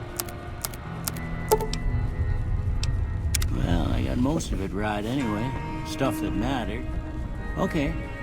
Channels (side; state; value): both; identical; correlation 1.00